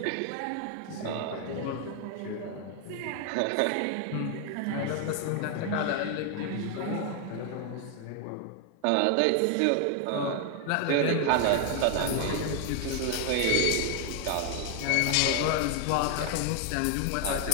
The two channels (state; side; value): different; both; correlation 0.00